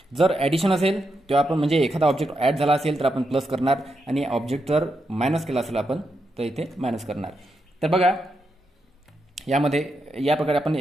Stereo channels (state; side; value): normal; both; correlation 0.84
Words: जर ॲडिशन असेल तेव्हा आपण म्हणजे एखादा ऑब्जेक्ट ॲड झाला असेल तर आपण प्लस करणार आणि ऑब्जेक्ट जर मायनस केला असेल आपण तर इथे मायनस करणार. तर बघा यामध्ये या प्रकारे आपण